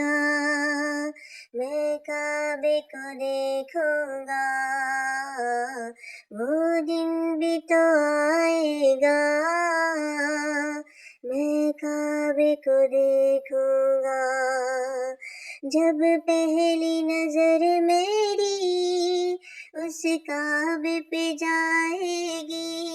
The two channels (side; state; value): both; identical; correlation 1.00